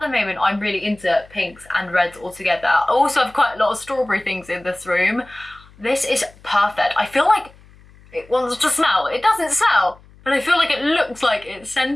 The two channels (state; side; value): noise; left; hum, 25 dB below the sound